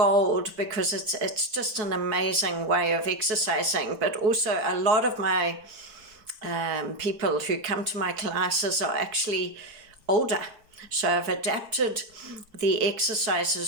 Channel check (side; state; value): left; late; 4.6 ms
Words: because it's just an amazing way of exercising. But also, a lot of my people who come to my classes are actually older, so I've adapted the